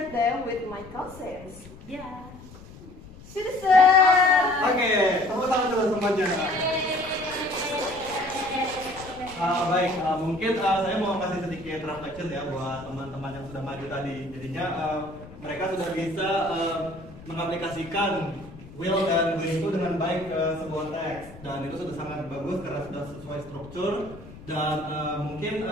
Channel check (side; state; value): left; noise; rumble, 18 dB below the sound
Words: them with my cousins. Yeah. Citizen! Oke, tepuk tangan dulu semuanya. Baik, mungkin saya mau kasih sedikit reflection ya buat teman-teman yang sudah maju tadi. Jadinya mereka sudah bisa mengaplikasikan will dan will itu dengan baik ke sebuah teks, dan itu sudah sangat bagus karena sudah sesuai struktur. Dan mungkin